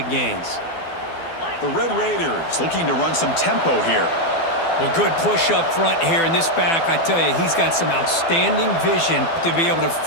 gains. The Red Raiders looking to run some tempo here. Well, good push up front here in this back. I tell you, he's got some outstanding vision to be able to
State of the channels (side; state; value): right; late; 12 ms